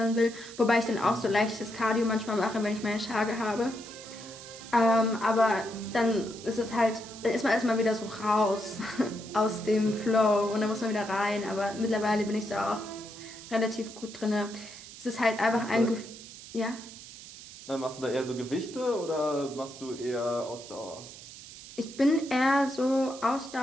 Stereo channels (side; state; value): right; noise; hiss, 15 dB below the sound